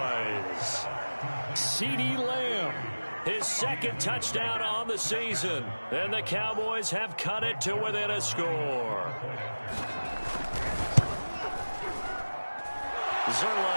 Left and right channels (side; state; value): both; inverted; correlation -1.00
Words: CeeDee Lamb, his 2nd touchdown on the season. And the Cowboys have cut it to within a score.